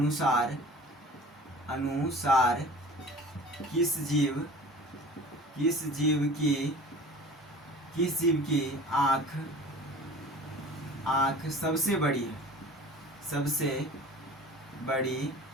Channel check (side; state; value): both; normal; correlation 0.42